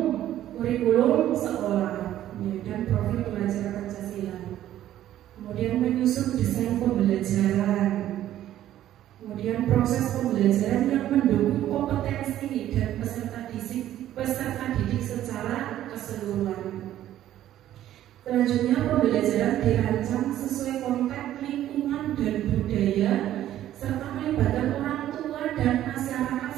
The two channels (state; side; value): quieter; left; 12.6 dB